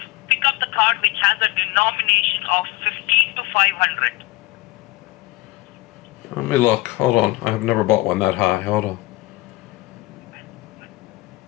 pick up the card which has a denomination of 15 to 500. Let me look. Hold on. I've never bought one that high. Hold on.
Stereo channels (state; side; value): quieter; right; 19.8 dB